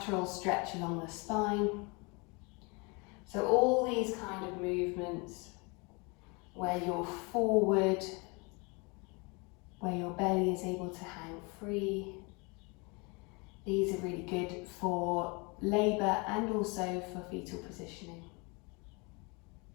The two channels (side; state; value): right; quieter; 29.6 dB